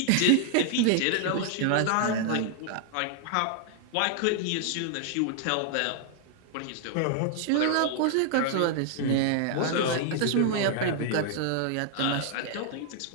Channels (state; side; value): different; both; correlation 0.00